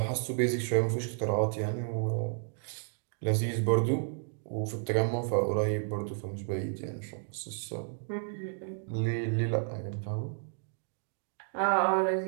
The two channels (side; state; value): left; silent; digital silence